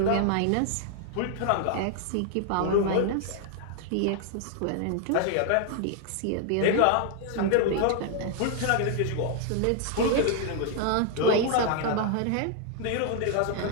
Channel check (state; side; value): different; both; correlation 0.00